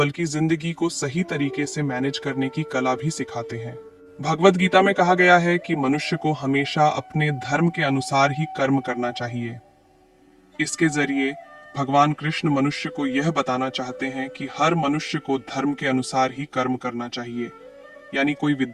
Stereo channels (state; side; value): identical; both; correlation 1.00